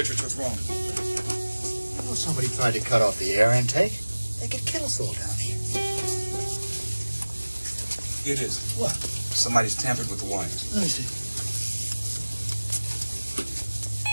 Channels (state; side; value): inverted; both; correlation -1.00